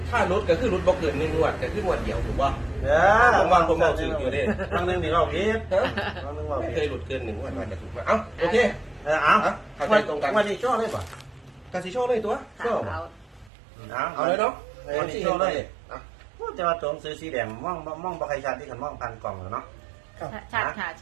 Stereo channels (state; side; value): drops out; left; at 13.5 s